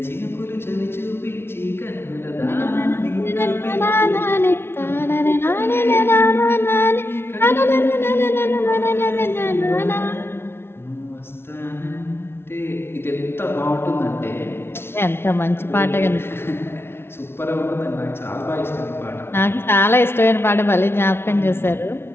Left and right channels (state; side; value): late; right; 0.12 ms